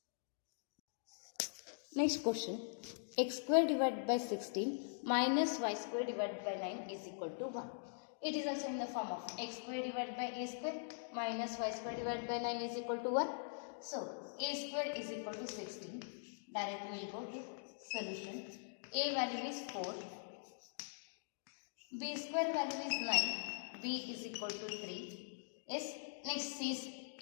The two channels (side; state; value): right; silent; digital silence